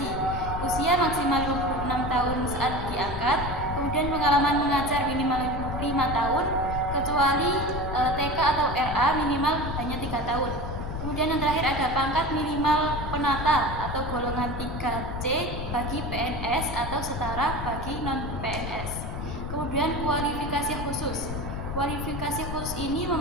usia maksimal 26 tahun saat diangkat, kemudian pengalaman mengajar minimal 5 tahun, kecuali TK atau RA minimal hanya 3 tahun. Kemudian yang terakhir ada pangkat minimal penata atau golongan 3C bagi PNS atau setara bagi non-PNS. Kemudian kualifikasi khusus. Kualifikasi khusus ini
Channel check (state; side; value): noise; left; rumble, 5 dB below the sound